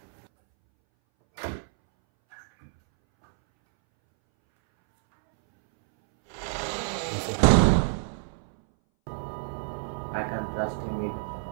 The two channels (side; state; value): left; silent; 60 dB below the other